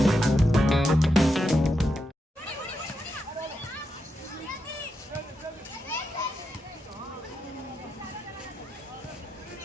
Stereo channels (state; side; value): normal; both; correlation 0.85